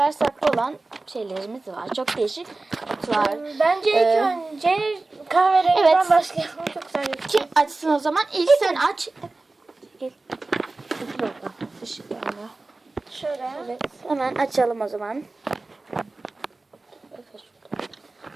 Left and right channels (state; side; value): quieter; left; 3.3 dB